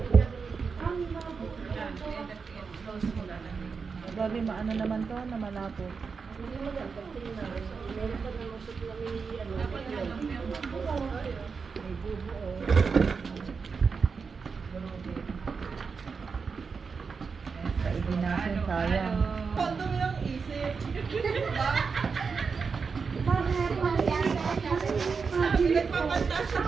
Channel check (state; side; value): quieter; left; 5.3 dB